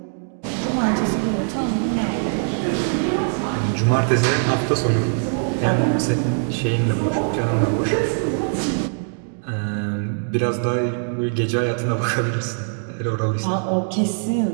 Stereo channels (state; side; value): silent; left; 64 dB below the other